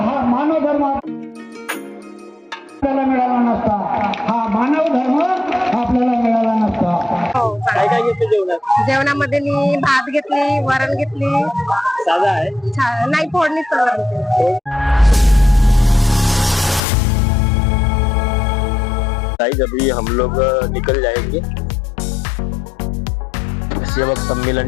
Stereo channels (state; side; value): drops out; right; at 16.8 s